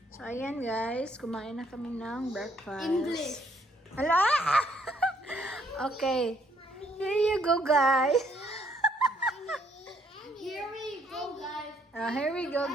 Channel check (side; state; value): both; normal; correlation 0.69